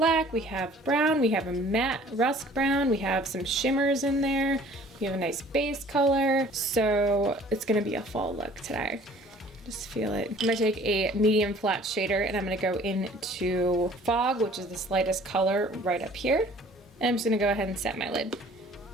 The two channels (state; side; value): normal; both; correlation 0.52